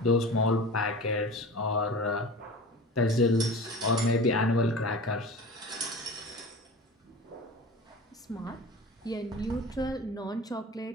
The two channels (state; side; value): normal; both; correlation 0.35